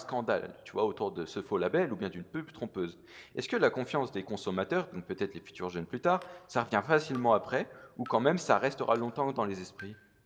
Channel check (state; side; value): identical; both; correlation 1.00